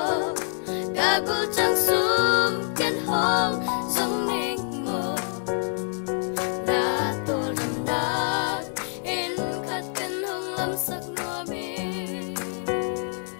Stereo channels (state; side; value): silent; right; digital silence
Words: ka gul chang sum ken hong